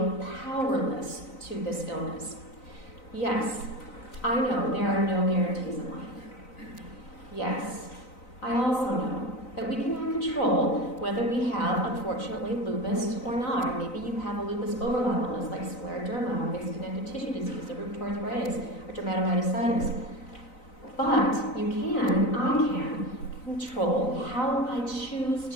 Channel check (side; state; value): right; late; 3.9 ms